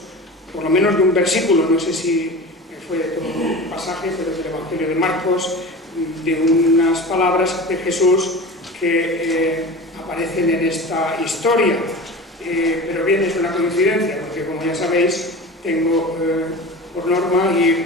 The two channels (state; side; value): normal; both; correlation 0.33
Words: por lo menos de un versículo, no sé si fue de todo un pasaje, pero del Evangelio de Marcos, de unas palabras de Jesús que aparecen en esta historia. Pero bien, es una coincidencia, porque como ya sabéis, tengo por norma ir